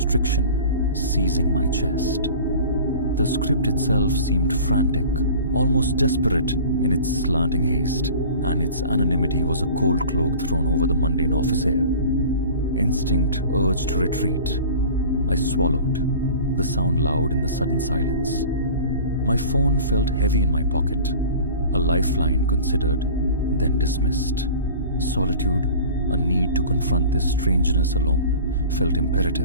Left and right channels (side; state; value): both; inverted; correlation -0.41